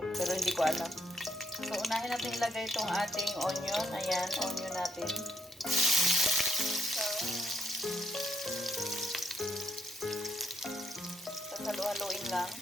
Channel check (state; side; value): normal; both; correlation 0.77